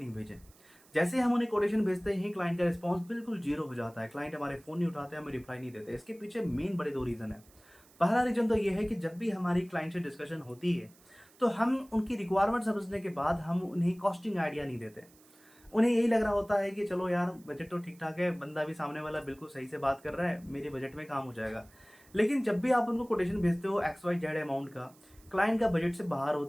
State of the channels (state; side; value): noise; right; hiss, 27 dB below the sound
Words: भेजें। जैसे ही हम उन्हें कोटेशन भेजते ही क्लाइंट का रिस्पॉन्स बिल्कुल ज़ीरो हो जाता है। क्लाइंट हमारे फ़ोन नहीं उठाते, हमें रिप्लाई नहीं देते। इसके पीछे मेन बड़े 2 रीज़न हैं। पहला रीज़न तो ये है कि जब भी हमारी क्लाइंट से डिस्कशन होती है, तो हम उनकी रिक्वायरमेंट समझने के बाद हम उन्हें कॉस्टिंग आइडिया नहीं देते। उन्हें यही लग रहा होता है कि चलो यार बजट तो ठीक-ठाक है, बंदा भी सामने वाला बिल्कुल सही से बात कर रहा है, मेरे बजट में काम हो जाएगा। लेकिन जब भी आप उनको कोटेशन भेजते हो एक्स वाई जेड अमाउंट का, क्लाइंट का बजट से बाहर